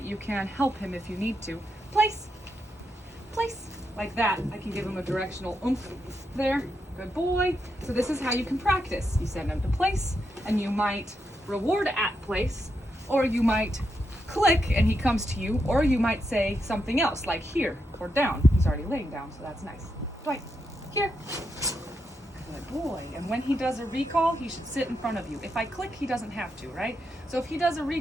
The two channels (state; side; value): normal; both; correlation 0.83